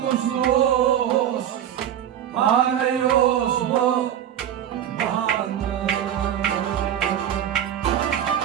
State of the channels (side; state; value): left; quieter; 10.3 dB